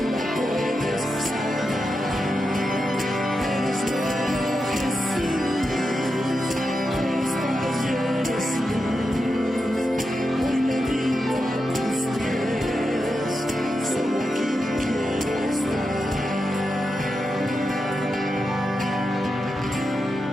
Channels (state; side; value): normal; both; correlation 0.88